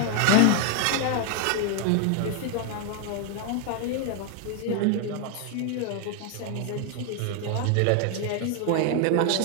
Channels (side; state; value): both; different; correlation 0.01